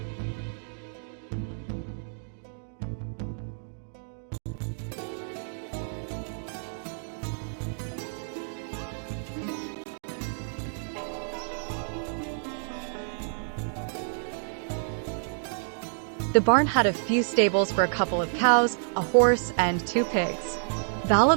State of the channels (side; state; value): left; silent; digital silence